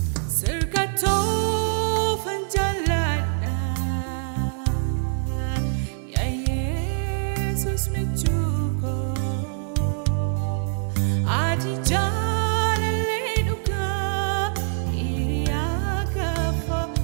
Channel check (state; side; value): silent; left; 62 dB below the other